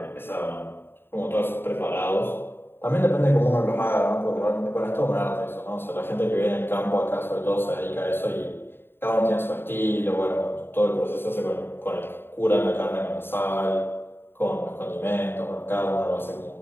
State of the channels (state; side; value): late; right; 0.11 ms